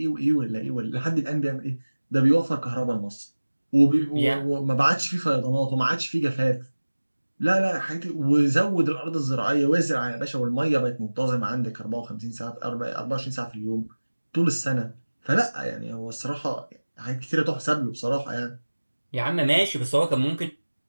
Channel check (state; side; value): inverted; both; correlation -1.00